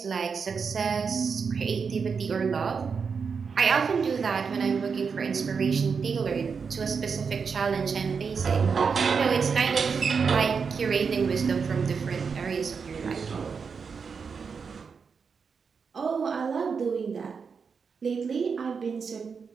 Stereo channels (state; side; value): quieter; left; 5.7 dB